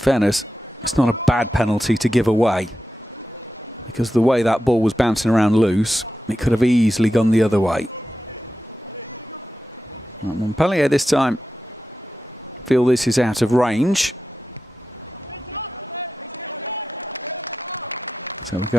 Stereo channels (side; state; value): both; normal; correlation 0.91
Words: it's not a bad penalty to give away, because the way that ball was bouncing around loose, it could have easily gone the other way. Montpellier this time feel this is out of range. So we're